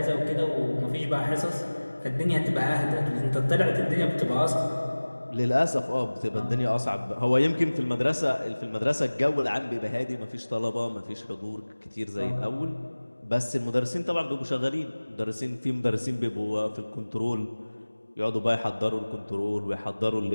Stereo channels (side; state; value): both; inverted; correlation -1.00